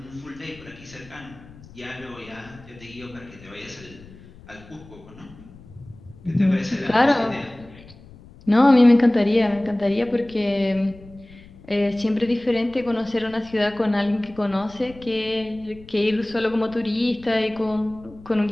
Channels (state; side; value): noise; left; rumble, 21 dB below the sound